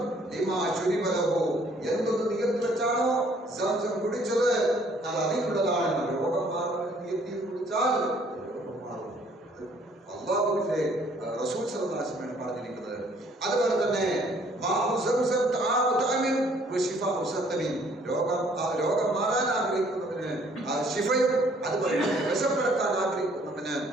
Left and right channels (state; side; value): normal; both; correlation 0.61